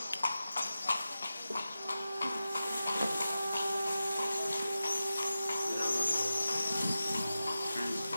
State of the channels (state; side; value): inverted; both; correlation -0.93